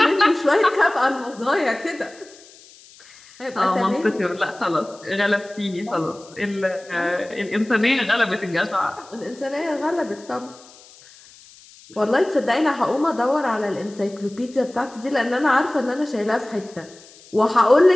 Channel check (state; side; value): noise; left; hiss, 23 dB below the sound